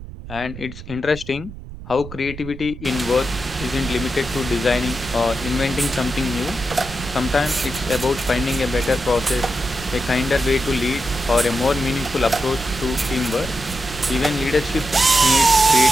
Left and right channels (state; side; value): noise; right; rumble, 13 dB below the sound